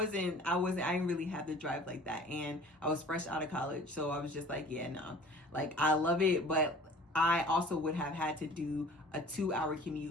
really have the drive like that. And I was fresh out of college. So I was just like, yeah, no. Like, I love it, but I also would have had to do a 2-hour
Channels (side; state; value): both; normal; correlation 0.46